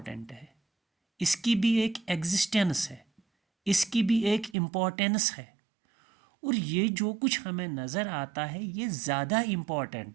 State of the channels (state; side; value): drops out; left; at 4.5 s